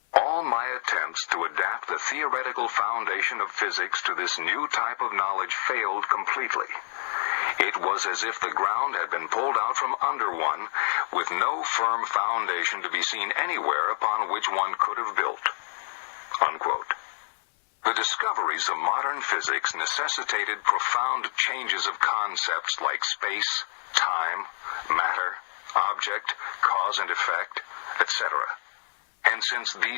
"All my attempts to adapt the theoretical foundation of physics to this new type of knowledge failed completely. It was as if the ground had been pulled out from under one, with no firm foundation to be seen anywhere upon which one could have built." Unquote. The discoveries of modern physics necessitated profound changes of concepts like space, time, matter, object, cause and effect, etc. And since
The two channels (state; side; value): silent; right; 60 dB below the other